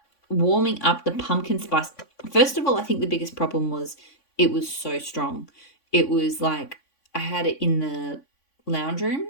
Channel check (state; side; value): late; right; 3.5 ms